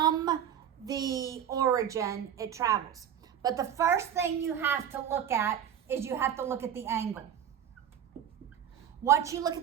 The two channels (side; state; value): left; quieter; 9.4 dB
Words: the origin it travels. But the first thing you have to look at is you have to look at the angle. Once you look